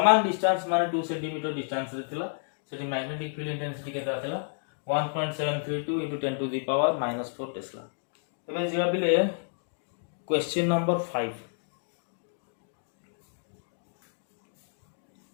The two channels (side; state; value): right; silent; digital silence